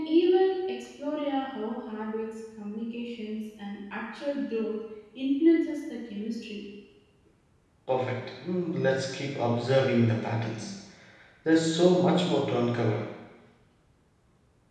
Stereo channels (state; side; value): identical; both; correlation 1.00